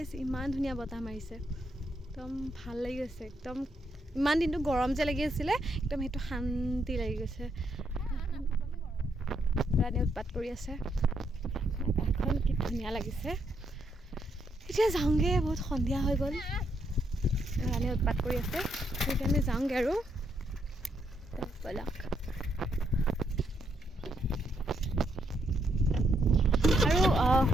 ইমান ধুনীয়া বতাহ মাৰিছে, একদম ভাল লাগি গৈছে। একদম ইমান দিনটো গৰম যে লাগি আছিলে, একদম সেইটো শান্তি লাগি গৈছে। ৰাণী উৎপাত কৰি আছে, আকাশখন কি ধুনীয়া লাগিছে। এতিয়া যাওঁগৈ, বহুত সন্ধিয়া হৈ গ'ল। ৰাণী উৎপাত কৰি আছে, সেইকাৰণে যাওঁগৈ আৰু ব'লক। আৰু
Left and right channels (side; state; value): both; normal; correlation 0.76